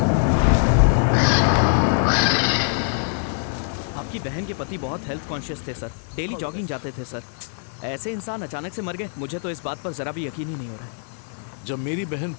आपकी बहन के पति बहुत हेल्थ कॉन्शियस थे सर, डेली जॉगिंग जाते थे सर। ऐसे इंसान अचानक से मर गए, मुझे तो इस बात पर जरा भी यकीन ही नहीं हो रहा है। जब मेरी बहन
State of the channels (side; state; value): right; silent; digital silence